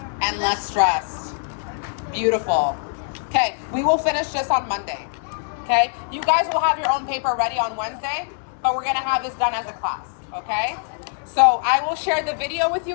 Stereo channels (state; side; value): silent; right; digital silence